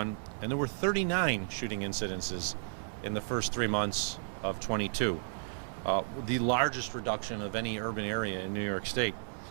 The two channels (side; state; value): left; silent; digital silence